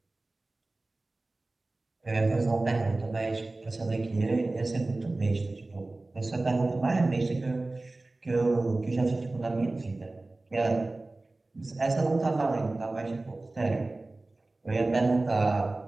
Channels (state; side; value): quieter; left; 3.0 dB